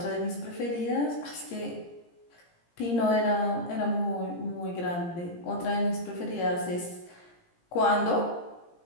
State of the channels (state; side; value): late; right; 17 ms